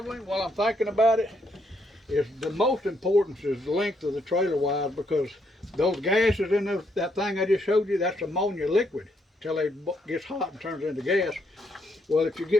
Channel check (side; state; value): both; normal; correlation 0.75